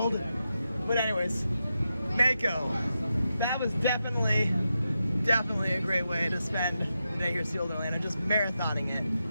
But anyways, Mako, that was definitely a great way to spend the day here at SeaWorld Orlando, just marathoning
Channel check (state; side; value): inverted; both; correlation -0.88